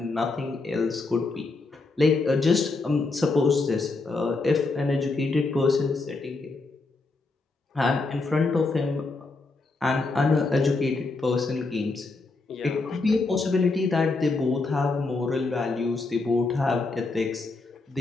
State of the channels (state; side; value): quieter; right; 3.6 dB